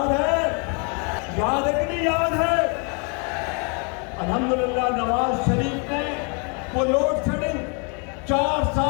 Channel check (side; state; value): right; quieter; 36.1 dB